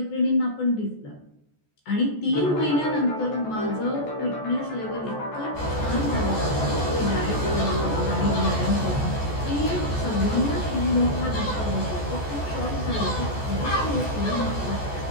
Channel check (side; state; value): right; late; 14 ms